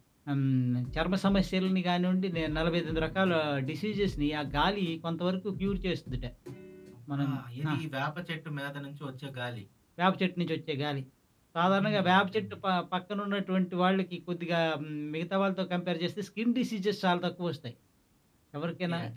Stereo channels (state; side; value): identical; both; correlation 1.00